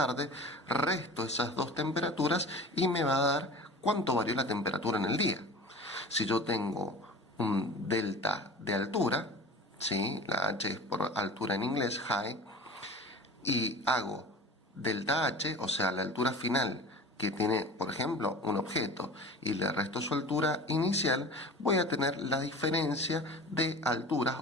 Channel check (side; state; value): both; normal; correlation 0.38